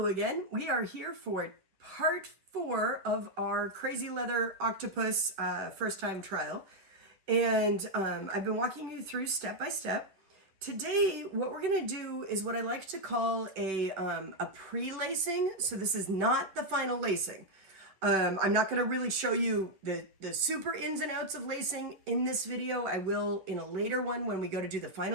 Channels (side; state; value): left; late; 10 ms